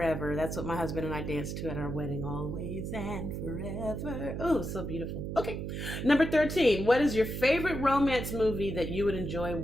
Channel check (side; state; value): right; noise; hum, 5 dB below the sound